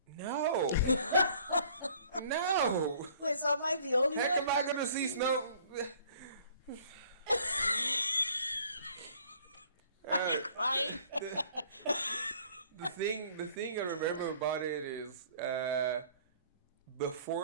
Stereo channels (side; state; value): both; inverted; correlation -0.55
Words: No. No. Wait, so am I the only Heck, one? am I gonna see snow? Crying? The thing I remember about it is